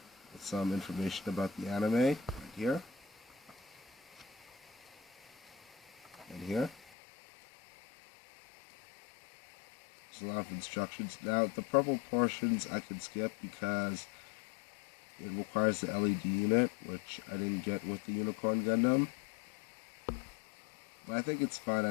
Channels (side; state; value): right; drops out; at 6.9 s